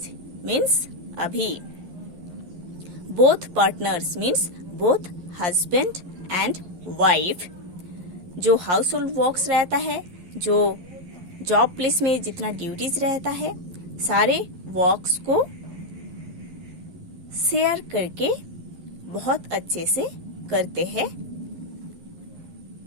मीन्स अभी. Both partners means both husband and wife जो हाउस होल्ड वर्क्स रहता है जो जॉब प्लेस में जितना ड्यूटीज रहता है सारे वर्क्स को शेयर करके बहुत अच्छे से करते हैं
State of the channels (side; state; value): left; late; 11 ms